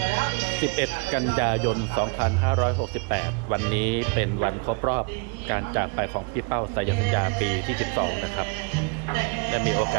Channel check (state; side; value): quieter; left; 33.7 dB